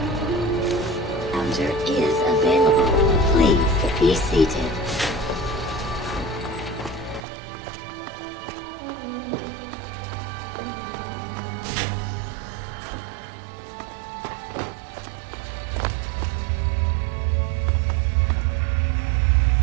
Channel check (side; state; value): left; drops out; at 7.2 s